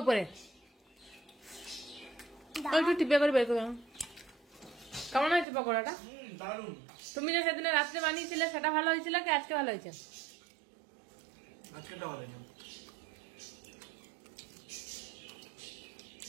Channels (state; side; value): drops out; left; at 5.5 s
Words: উপরে দাও। একটু টিপে করে বের করে দাও। কেমন হয়েছে পকোড়াটা? দারুণ। তুমি যে সেদিনে রাত্রে বানিয়েছিলে সেটা ভালো হয়েছিল কি আজকে ভালো হয়েছে? আজকেটা ভালো হয়েছে।